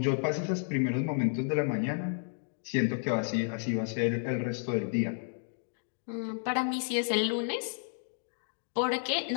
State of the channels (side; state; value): right; silent; digital silence